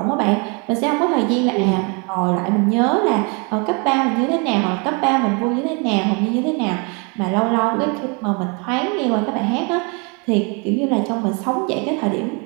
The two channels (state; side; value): quieter; left; 33.0 dB